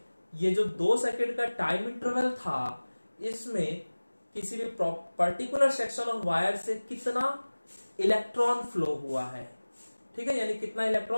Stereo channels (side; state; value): both; inverted; correlation -1.00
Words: ये जो 2 सेकंड का टाइम इंटरवल था, इसमें किसी भी पर्टिकुलर सेक्शन ऑफ वायर से कितना इलेक्ट्रॉन फ्लो हुआ है, ठीक है, यानी कितना